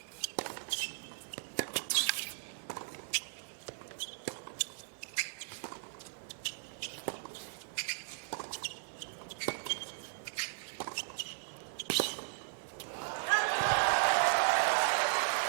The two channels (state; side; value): silent; left; digital silence